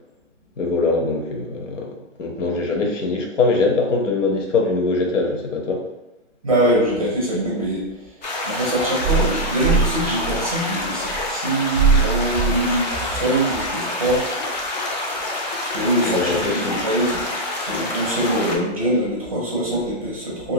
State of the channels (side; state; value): both; normal; correlation 0.04